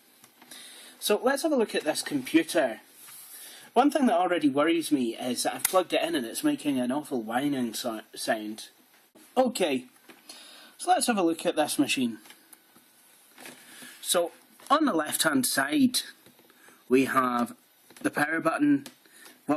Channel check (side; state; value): both; identical; correlation 1.00